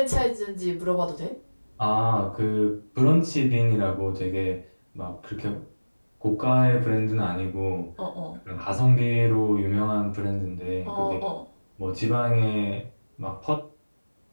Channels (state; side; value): inverted; both; correlation -1.00